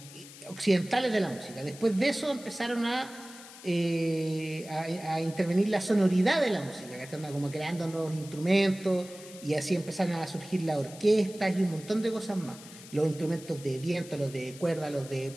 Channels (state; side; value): noise; left; hiss, 17 dB below the sound